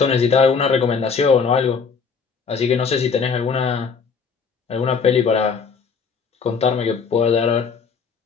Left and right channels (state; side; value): quieter; right; 5.5 dB